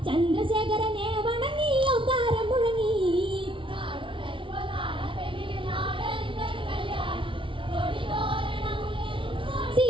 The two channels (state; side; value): late; left; 0.25 ms